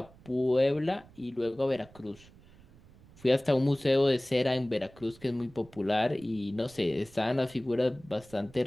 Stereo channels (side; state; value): right; noise; rumble, 24 dB below the sound